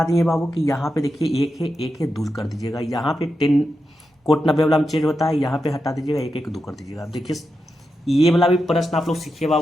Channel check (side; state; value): both; normal; correlation 0.88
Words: दिए बाबू कि यहाँ पे देखिए एक है दूर कर दीजिएगा, यहाँ पे 10 कोट 90 वाला में चेंज होता है, यहाँ पे हटा दीजिएगा, एक दो कर दीजिएगा। अब देखिए ये वाला भी प्रश्न आप लोग सीखिए